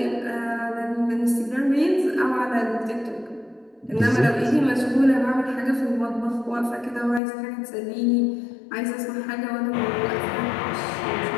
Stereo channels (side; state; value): right; drops out; at 7.2 s